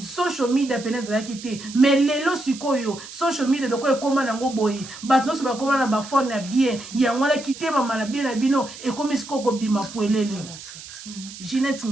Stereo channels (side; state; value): right; noise; hiss, 14 dB below the sound